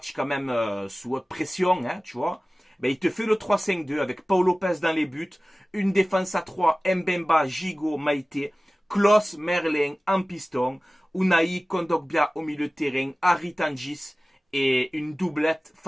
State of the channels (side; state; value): both; normal; correlation 0.97